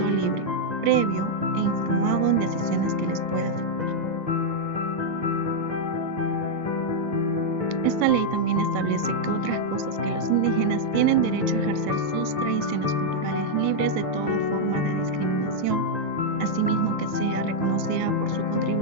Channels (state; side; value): late; left; 1.9 ms